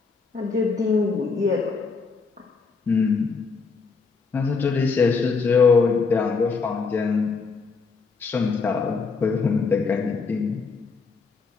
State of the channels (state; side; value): quieter; right; 4.8 dB